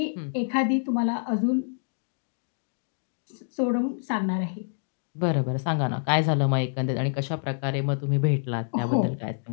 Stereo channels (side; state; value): right; silent; digital silence